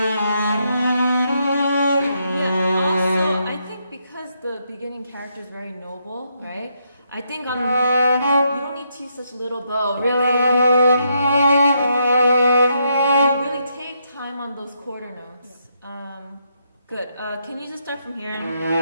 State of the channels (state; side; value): inverted; both; correlation -0.77